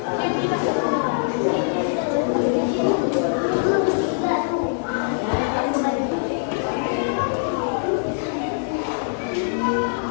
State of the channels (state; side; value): silent; right; digital silence